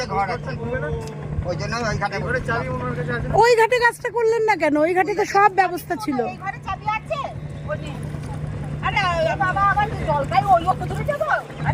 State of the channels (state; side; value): identical; both; correlation 1.00